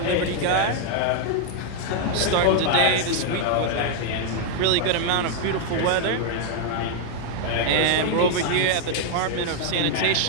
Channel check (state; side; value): different; both; correlation 0.00